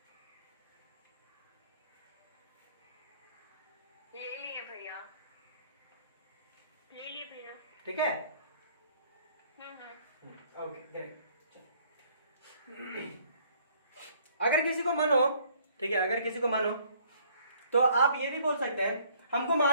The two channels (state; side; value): inverted; both; correlation -0.62